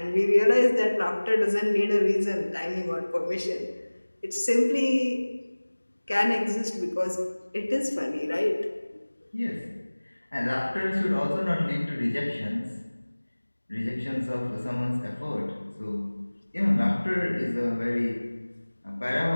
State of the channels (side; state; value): both; inverted; correlation -1.00